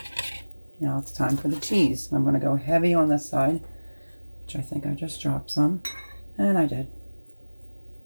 Now it's time for the cheese. I'm going to go heavy on this side, which I think I just dropped some, and I did.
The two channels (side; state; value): both; inverted; correlation -1.00